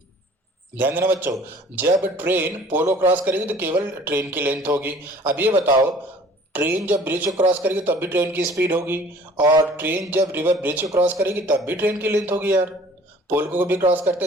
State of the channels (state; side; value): normal; both; correlation 0.51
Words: ध्यान देना बच्चों, जब ट्रेन पोलो क्रॉस करेगी तो केवल ट्रेन की लेंथ होगी। अब ये बताओ, ट्रेन जब ब्रिज को क्रॉस करेगी तब भी ट्रेन की स्पीड होगी, और ट्रेन जब रिवर ब्रिज को क्रॉस करेगी तब भी ट्रेन की लेंथ होगी यार, पोल को भी क्रॉस करते